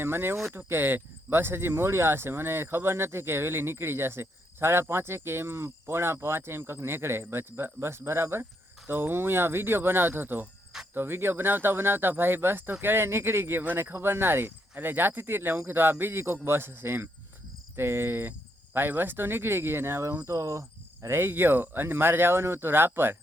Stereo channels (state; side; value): normal; both; correlation 0.77